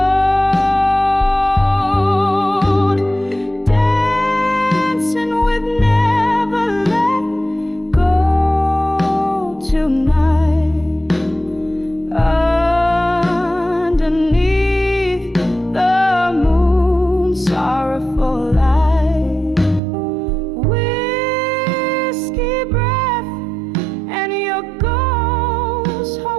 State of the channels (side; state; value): left; drops out; at 19.8 s